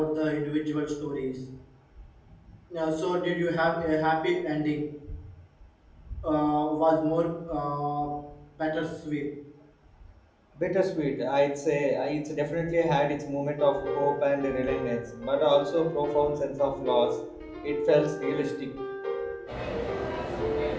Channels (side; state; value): both; identical; correlation 1.00